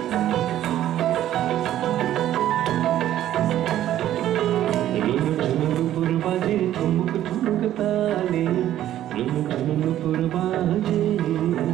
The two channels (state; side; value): quieter; left; 12.4 dB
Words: ठुमक ठुमक ताले नुपुर बाजे,